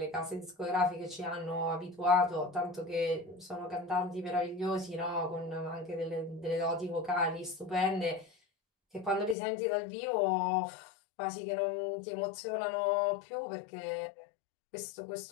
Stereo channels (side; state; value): right; drops out; at 9.3 s